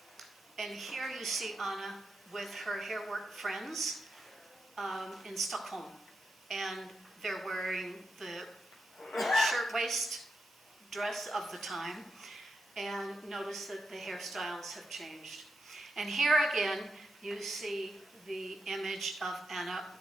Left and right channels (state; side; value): normal; both; correlation 0.86